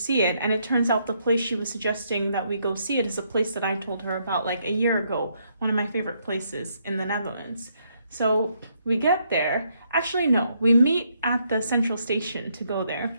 it, and it turns out the place she was suggesting that we go see it is a place that I told her about like a year ago, one of my favorite places in the Netherlands. So we get there. Actually, no, we meet at the central station to go there.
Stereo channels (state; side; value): inverted; both; correlation -0.74